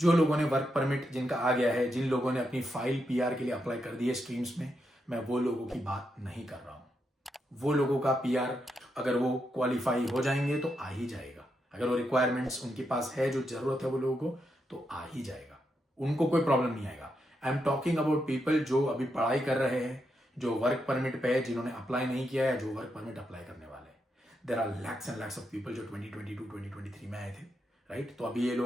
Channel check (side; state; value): both; normal; correlation 0.83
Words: लोगों ने वर्क परमिट जिनका आ गया है, जिन लोगों ने अपनी फाइल PR के लिए अप्लाई कर दी है स्ट्रीम्स में, मैं वो लोगों की बात नहीं कर रहा हूं। वो लोगों का PR अगर वो क्वालिफाई हो जाएंगे तो आ ही जाएगा। अगर वो रिक्वायरमेंट्स उनके पास है, जो जरूरत है वो लोगों को, तो आ ही जाएगा, उनको कोई प्रॉब्लम नहीं आएगा। आई एम टॉकिंग अबाउट पीपल जो अभी पढ़ाई कर रहे हैं, जो वर्क परमिट पे है, जिन्होंने अप्लाई नहीं किया है, जो वर्क परमिट अप्लाई करने वाले हैं। There are lakhs and lakhs of people जो 2022 2023 में आए थे, राइट। तो अभी ये